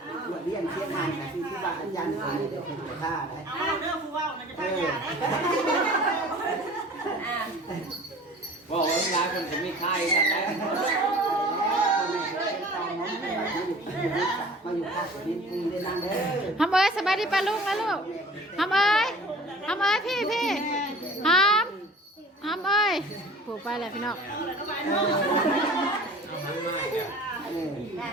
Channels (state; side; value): normal; both; correlation 0.45